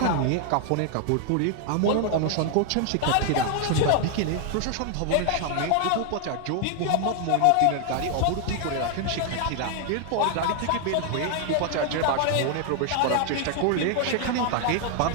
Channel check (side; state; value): both; different; correlation 0.00